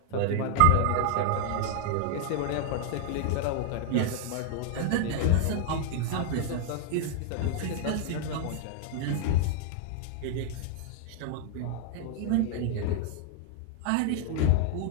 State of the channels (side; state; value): both; different; correlation 0.00